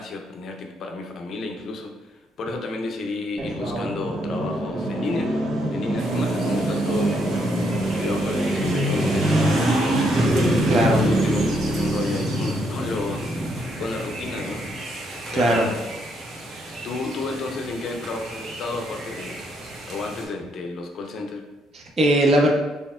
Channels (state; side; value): normal; both; correlation 0.74